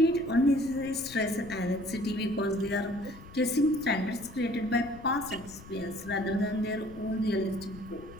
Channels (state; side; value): noise; left; rumble, 18 dB below the sound